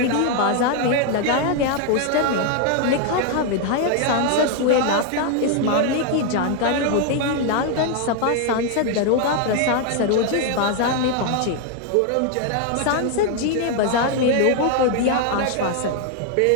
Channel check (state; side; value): different; both; correlation 0.00